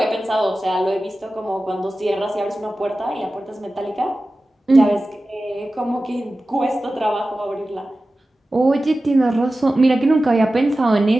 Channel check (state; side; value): normal; both; correlation 0.95